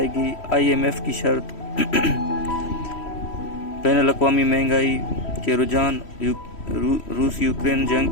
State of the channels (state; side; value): late; right; 3.1 ms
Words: IMF کی شرط، بین الاقوامی مہنگائی کے رجحان، روس یوکرین جنگ